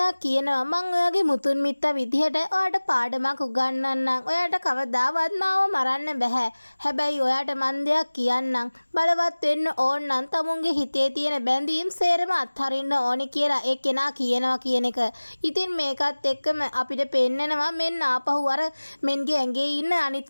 කියනවා මං ඔයාගේ මුතුන් මිත්තා විදිහට ඔයාට පාඩමක් උගන්වන්නම්. ඔයාට කවදාවත් මාව මරන්න බෑ. හැබැයි ඔයාට මං දෙයක් කියන්නම්. බලවත් වෙන්න ඕන නම් තමුන්ගේ හිතේ තියෙන බැඳීම් සේරම අත්හරින්න ඕනි කියලා ඒ කෙනා කියනවා කියන එක. ඉතින් මේකත් එක්කම අපිට පෙන්නනවා මෙන්න ආපහු අර මෙන්ගේ ඇඟේ ඉන්න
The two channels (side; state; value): both; inverted; correlation -1.00